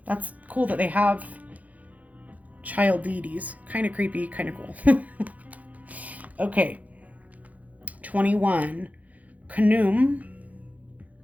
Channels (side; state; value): left; late; 0.075 ms